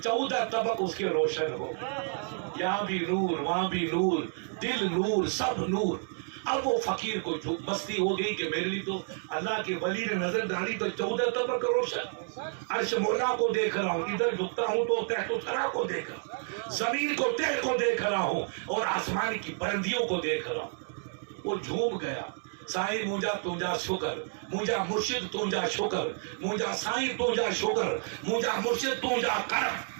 14 طبق اس کے روشن ہو. یہاں بھی نور، وہاں بھی نور، دل نور، سب نور. اب وہ فقیر کو مستی ہو گئی کہ میرے لیے تو اللہ کے ولی نے نظر ڈالی تو 14 طبق روشن. عرش مولا کو دیکھ رہا ہوں، ادھر جھکتا ہوں تو تحت و ثری کو دیکھ رہا ہوں، زمین کو تہ کو دیکھ رہا ہوں اور آسمان کی بلندیوں کو دیکھ رہا ہوں. وہ جھوم گیا. سائیں مجھا تجھا شکر، مجھا مرشد تجھا شکر، مجھا سائیں تجھا شکر، مجھا مرشد تجھا کرم.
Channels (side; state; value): left; silent; 57 dB below the other